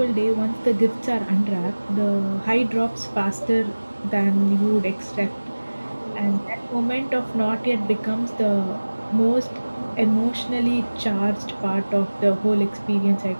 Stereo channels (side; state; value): both; inverted; correlation -1.00